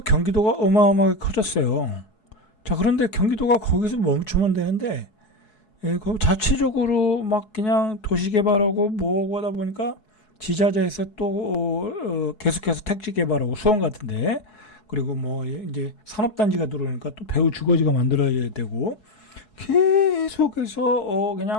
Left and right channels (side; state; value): right; late; 4.7 ms